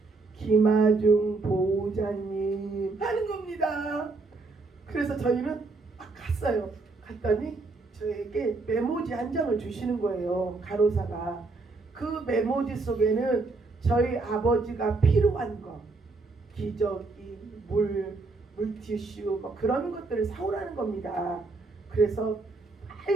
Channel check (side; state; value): left; quieter; 3.7 dB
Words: 김아중 보호자님 하는 겁니다. 그래서 저희는 막 갔어요. 갔더니 저에게 메모지 한 장을 주시는 거예요. 간호사가. 그 메모지 속에는 저희 아버지가 필요한 거, 기저귀, 물티슈 뭐 그런 것들을 사오라는 겁니다. 그래서